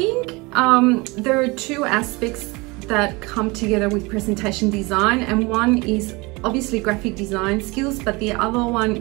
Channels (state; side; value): quieter; left; 25.2 dB